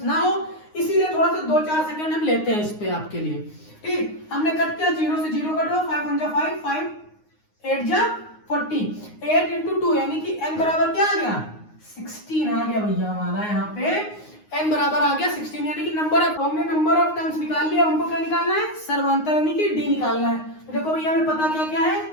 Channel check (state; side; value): late; right; 9.6 ms